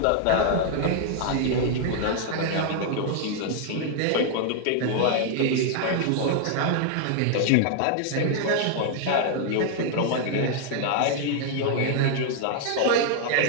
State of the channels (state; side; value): different; both; correlation 0.00